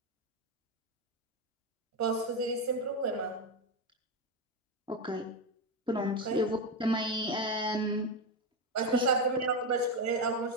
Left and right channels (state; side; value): normal; both; correlation 0.11